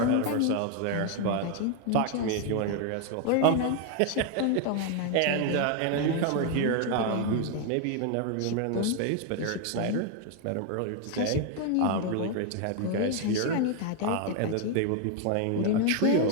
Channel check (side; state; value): both; different; correlation 0.01